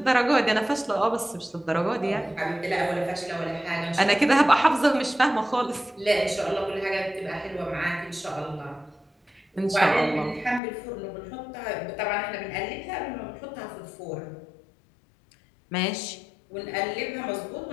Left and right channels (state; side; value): drops out; right; at 10.6 s